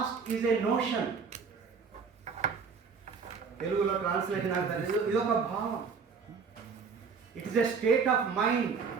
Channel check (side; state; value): left; quieter; 5.6 dB